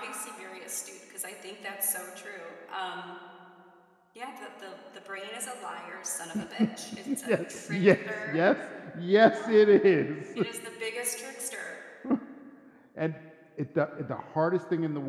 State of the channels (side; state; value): both; identical; correlation 1.00